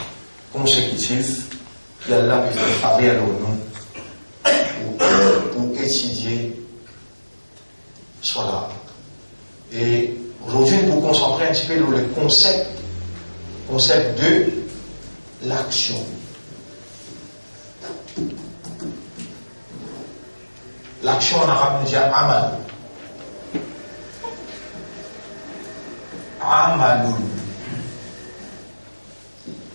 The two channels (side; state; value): both; inverted; correlation -1.00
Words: consécutif qu'Allah peut faire faveur à nous pour étudier cela. Et aujourd'hui, nous nous concentrer un petit peu sur le concept de l'action. L'action en arabe nous dit amal. Amaloun.